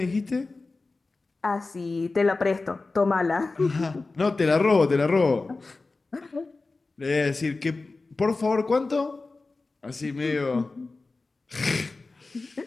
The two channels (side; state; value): right; quieter; 3.6 dB